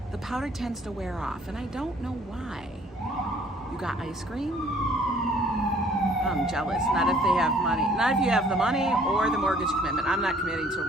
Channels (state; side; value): normal; both; correlation 0.58